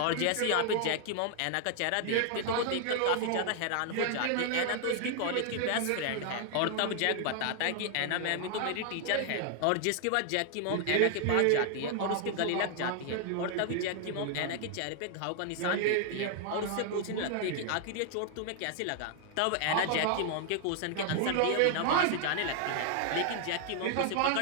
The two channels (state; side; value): different; both; correlation 0.00